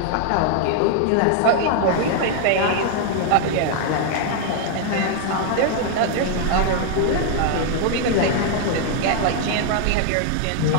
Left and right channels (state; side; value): different; both; correlation 0.00